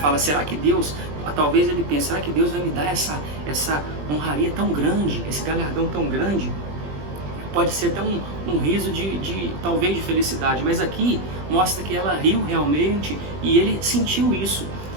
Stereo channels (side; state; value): left; late; 20 ms